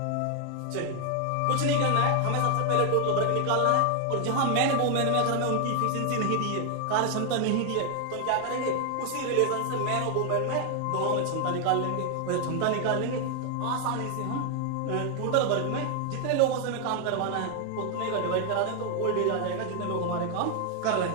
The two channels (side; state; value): both; different; correlation 0.00